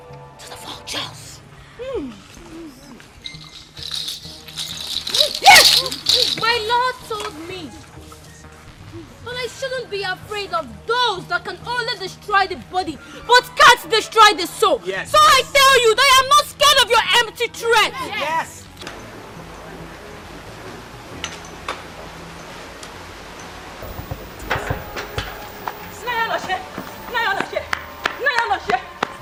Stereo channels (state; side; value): identical; both; correlation 1.00